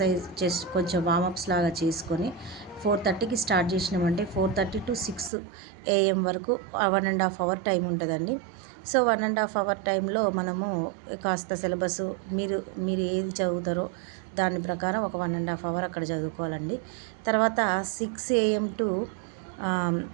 చేసి కొంచెం వామప్స్ లాగా చేసుకొని 4:30కి స్టార్ట్ చేసినామంటే 4:30 to 6 AM వరకు 1.5 అవర్ టైం ఉంటుందండి. సో 1.5 అవర్ టైంలో మనము కాస్త సిలబస్ మీరు ఏది చదువుతారో దాని ప్రకారం ఒక 1.5 అవర్ అక్కడ చదువుకోవాలండి. తర్వాత 6 AM to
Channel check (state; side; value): drops out; left; at 5.3 s